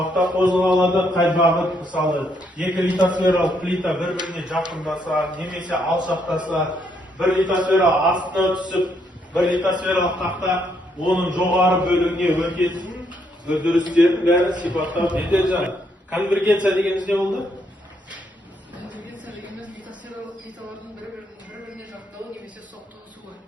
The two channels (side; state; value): both; normal; correlation 0.74